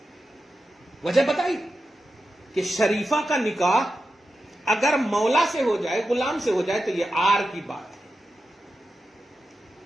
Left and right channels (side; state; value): both; normal; correlation 0.90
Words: وجہ بتائی کہ شریفہ کا نکاح اگر مولا سے ہو جائے، غلام سے ہو جائے، تو یہ آر کی بات ہے۔